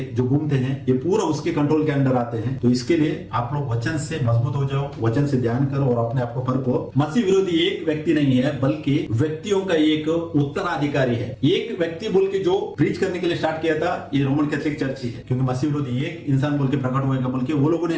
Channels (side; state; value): both; identical; correlation 1.00